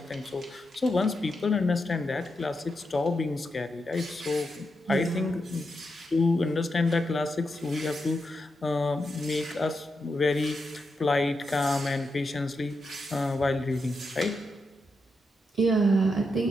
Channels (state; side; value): normal; both; correlation 0.85